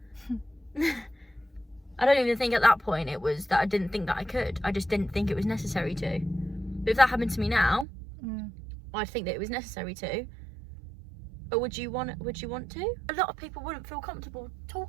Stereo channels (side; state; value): left; drops out; at 7.9 s